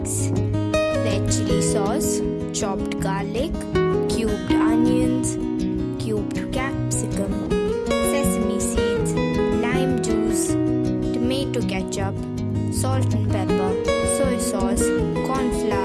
red chili sauce, chopped garlic, cubed onions, cubed capsicum, sesame seeds, lime juice, tomato ketchup, salt and pepper, soy sauce,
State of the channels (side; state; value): both; identical; correlation 1.00